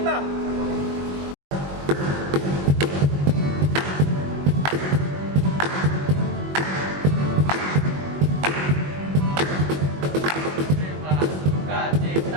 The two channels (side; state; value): left; late; 21 ms